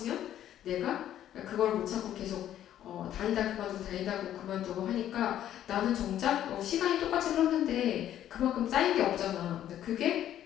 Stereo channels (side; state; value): right; quieter; 11.4 dB